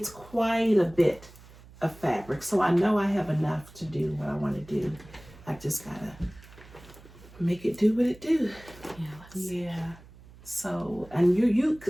quite a bit of fabric. So I know I have enough to do what I want to do. I just got to make it do what it do. Yeah. So, and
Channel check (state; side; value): noise; right; hum, 21 dB below the sound